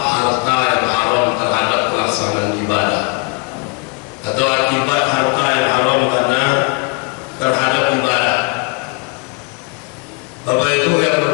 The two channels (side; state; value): right; quieter; 30.8 dB